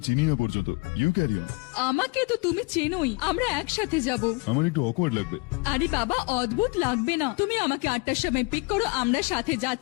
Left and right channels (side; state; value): right; quieter; 27.9 dB